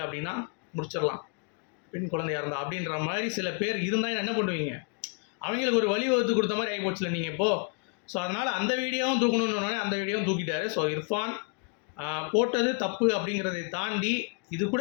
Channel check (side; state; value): right; quieter; 35.4 dB